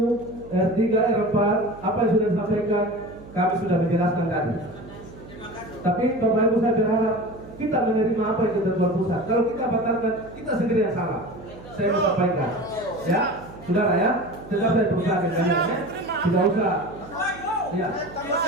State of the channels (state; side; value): noise; right; hum, 18 dB below the sound